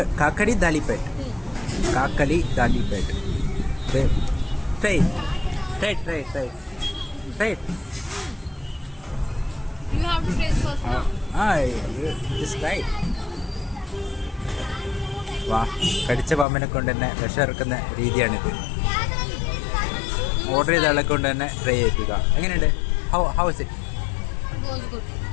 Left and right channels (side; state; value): right; drops out; at 16.4 s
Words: ദാലിപ്പേട്ട്. കാക്കലി ദാലിപ്പേട്ട്. Try. You have to taste first now. Just right. വാ, കടിച്ച പാമ്പിനെ കൊണ്ട് തന്നെ വിഷമിറക്കുന്ന രീതിയാണിത്. ഓർഡർ ചെയ്ത ആളെ കൊണ്ട് തന്നെ ട്രൈ ചെയ്യിപ്പിക്കുക. എങ്ങനെയുണ്ട്? How is it? It was good.